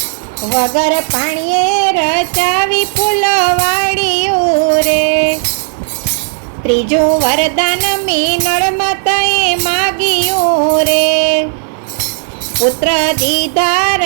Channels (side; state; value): left; silent; digital silence